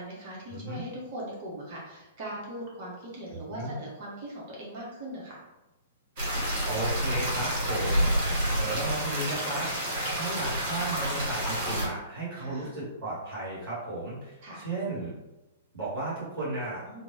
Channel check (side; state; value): both; inverted; correlation -0.51